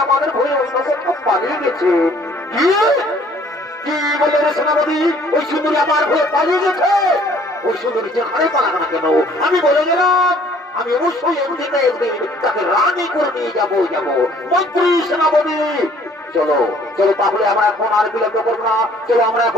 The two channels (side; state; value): both; normal; correlation 0.57